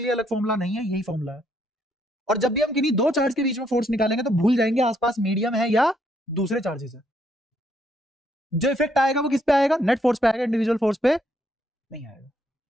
लिए अलग फॉर्मूला नहीं है, यही फॉर्मूला है। और जब भी हम किन्हीं दो चार्ज के बीच में फोर्स निकालेंगे तो भूल जाएंगे आसपास मीडियम है या दूसरे चार्जेस है। जो इफेक्ट आएगा वो किस पे आएगा? नेट फोर्स पे आएगा, इंडिविजुअल फोर्स पे नहीं आएगा।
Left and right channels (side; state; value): both; normal; correlation 0.72